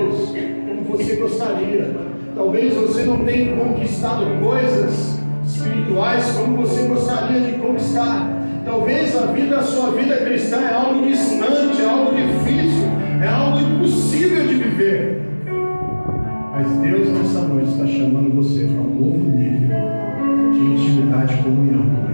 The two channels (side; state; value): both; inverted; correlation -1.00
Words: como você gostaria. Talvez você não tenha conquistado coisas espirituais como você gostaria de conquistar. Talvez a sua vida cristã é algo distante, é algo difícil, é algo impossível de viver. Mas Deus nessa noite está chamando você para um novo nível de intimidade e comunhão com